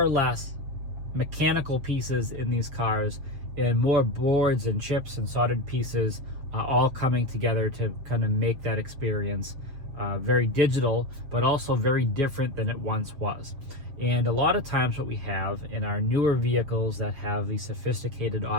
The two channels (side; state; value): left; late; 7.4 ms